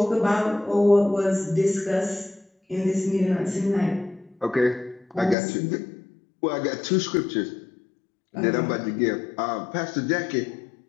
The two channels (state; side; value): drops out; right; at 5.4 s